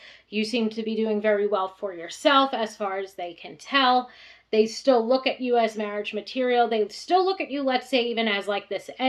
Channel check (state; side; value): identical; both; correlation 1.00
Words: you seem to be doing very well for yourself as far as they can tell. They still look at you as marriage material. They still look at you, let's say, even as like this